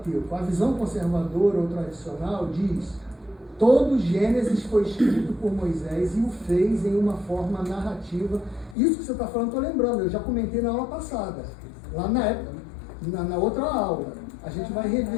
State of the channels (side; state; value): right; drops out; at 8.8 s